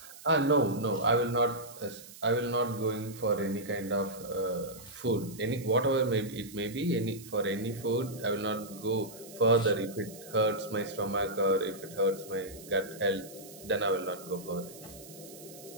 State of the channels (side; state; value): right; noise; hiss, 17 dB below the sound